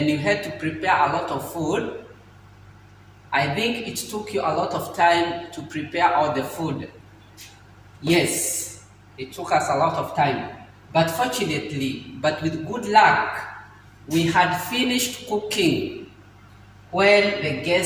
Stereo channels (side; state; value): both; identical; correlation 1.00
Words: you had to prepare a lot of food? I think it took you a lot of time to prepare all the food. Yes, it took us a lot of time. But fortunately, but with good luck, we had finished cooking when the